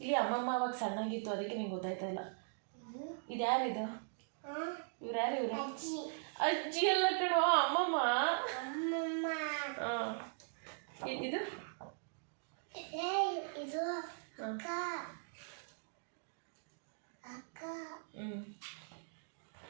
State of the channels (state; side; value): silent; left; digital silence